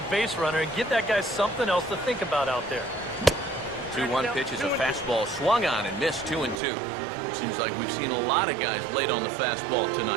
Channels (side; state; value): left; drops out; at 6.6 s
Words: base runner and give that guy something else to think about out there. 2-1 pitch is a fastball swung on and missed. 2-2. Seems like we've seen a lot of guys late on the fastball